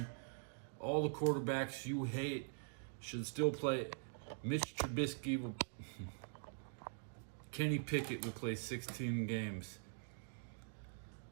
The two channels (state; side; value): silent; left; digital silence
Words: All the quarterbacks you hate should still play. Mitch Trubisky will... Kenny Pickett will play 16 games.